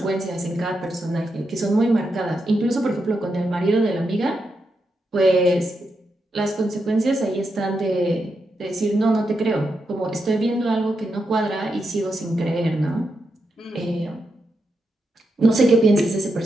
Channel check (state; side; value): normal; both; correlation 0.85